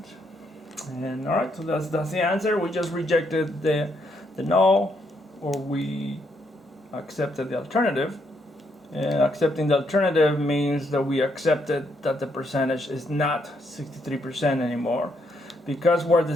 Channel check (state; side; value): normal; both; correlation 0.75